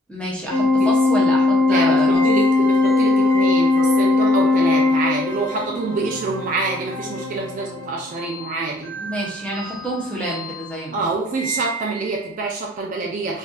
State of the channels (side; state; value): both; normal; correlation 0.63